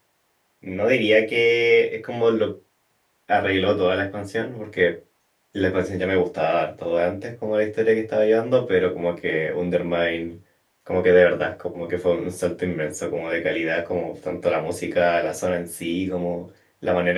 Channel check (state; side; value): identical; both; correlation 1.00